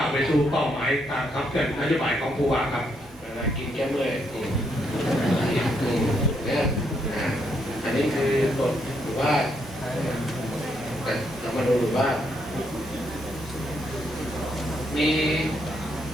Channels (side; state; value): both; normal; correlation 0.76